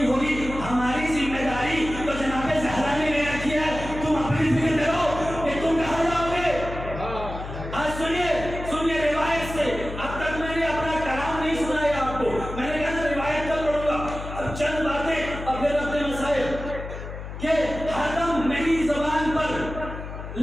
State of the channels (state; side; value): noise; left; hum, 9 dB below the sound